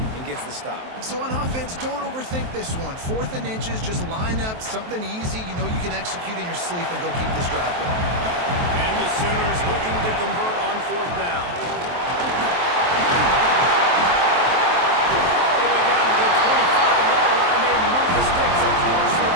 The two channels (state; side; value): late; left; 23 ms